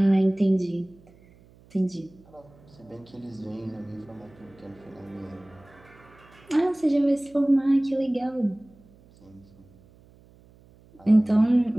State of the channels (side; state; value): right; noise; hum, 27 dB below the sound